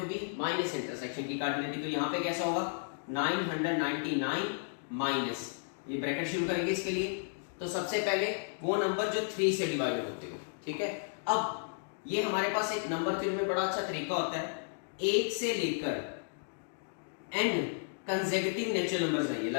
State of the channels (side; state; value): right; silent; digital silence